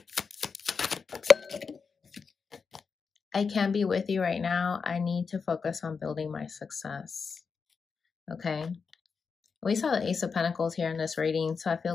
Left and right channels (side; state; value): right; quieter; 5.4 dB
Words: I can't be with you right now. I need to focus on building my success. Okay. We saw the Ace of Pentacles here in this reading, so I